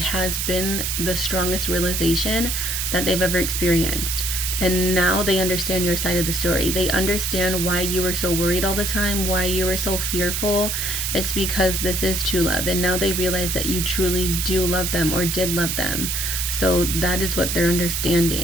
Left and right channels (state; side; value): noise; right; hiss, 1 dB below the sound